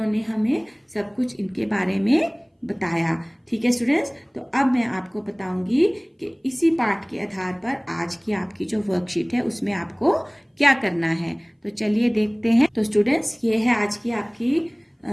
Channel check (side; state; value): both; identical; correlation 1.00